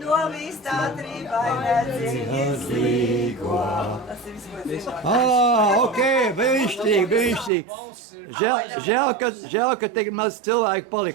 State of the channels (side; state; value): left; drops out; at 7.5 s